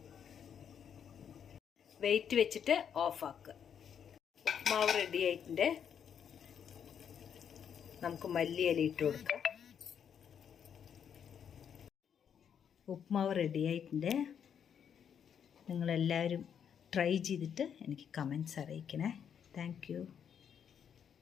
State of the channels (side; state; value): right; quieter; 8.1 dB